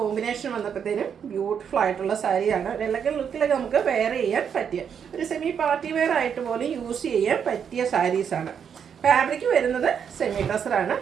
വന്നപ്പോഴത്തേനും ബ്യൂട്ടിഫുൾ ആയിട്ടുള്ള സാരിയാണ്. ഒരു എലഗന്റ് ലുക്കിലൊക്കെ നമുക്ക് വെയർ ചെയ്യാൻ പറ്റിയ ഒരു സെമി പാർട്ടി വെയർ ആയിട്ട് പോലും യൂസ് ചെയ്യാൻ പറ്റിയ സാരീസാണ്. ഫാബ്രിക് വരുന്നത് സെമി ടെസറാണ്.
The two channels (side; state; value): left; quieter; 7.6 dB